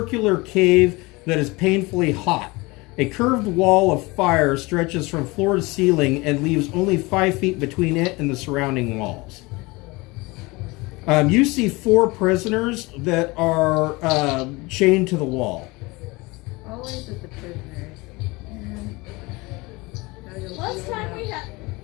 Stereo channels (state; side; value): quieter; right; 23.8 dB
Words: cave that is painfully hot. A curved wall of fire stretches from floor to ceiling and leaves only 5 feet between it and the surrounding walls. You see 4 prisoners that are chained to the wall. Always with the prisoners. Last time we had.